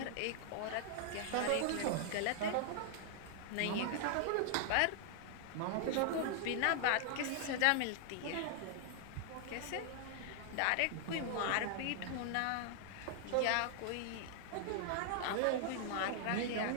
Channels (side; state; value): both; different; correlation -0.01